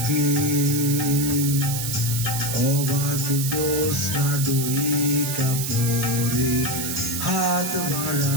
অবাক জ্যোৎস্না ডইকা পরে হাত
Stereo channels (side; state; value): right; noise; hiss, 3 dB below the sound